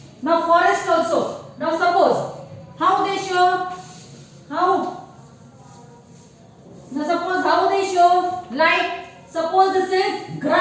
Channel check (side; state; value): both; identical; correlation 1.00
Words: Now forest also. Now suppose how they show like suppose this is